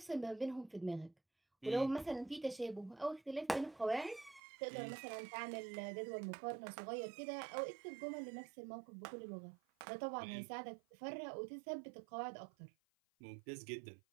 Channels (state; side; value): drops out; left; at 4.4 s